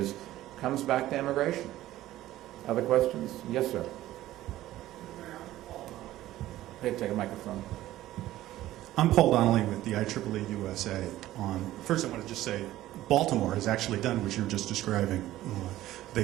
comes back to immigration. Other questions? Yes, sir. Hey, take a microphone. I'm Paul Donnelly with the IEEE USA. First, I want to just say Baltimore has actually done what you were just describing. They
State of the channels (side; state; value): left; quieter; 14.9 dB